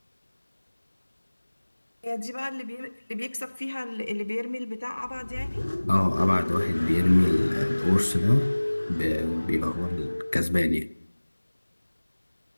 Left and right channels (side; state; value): both; inverted; correlation -1.00